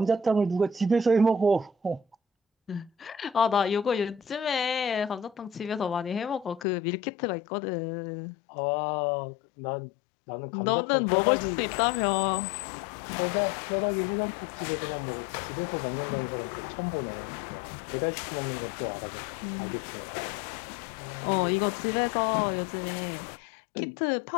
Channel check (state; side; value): drops out; right; at 6.7 s